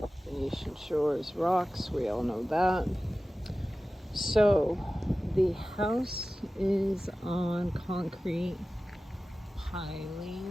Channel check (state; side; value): normal; both; correlation 0.96